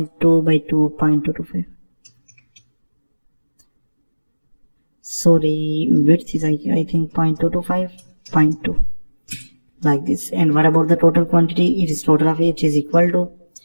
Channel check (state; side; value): inverted; both; correlation -1.00